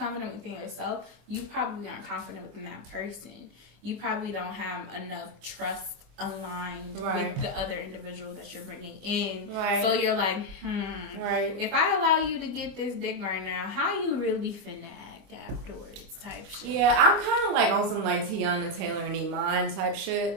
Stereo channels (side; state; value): left; late; 25 ms